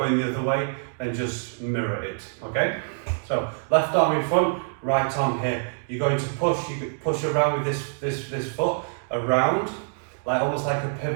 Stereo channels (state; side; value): silent; left; digital silence